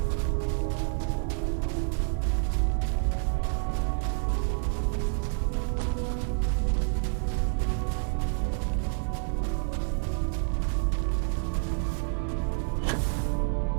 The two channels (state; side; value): silent; left; digital silence